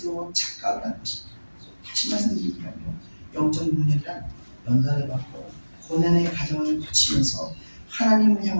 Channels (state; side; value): inverted; both; correlation -1.00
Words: 착각을 하는 것입니다. 다시 말씀드리면요, 영적 능력이란 연단을 받고 고난의 과정을 거치면서 하나님을